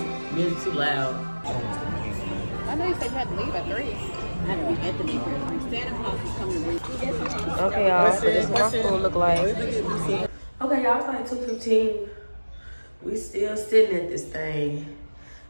music too loud. I know you said you had to leave at 3. I had to be at the bakery. Santa Claus is coming to read. Okay, y'all, so this is what my food look like. Okay, y'all, it's like 2:15. We still sitting at this thing.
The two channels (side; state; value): both; inverted; correlation -1.00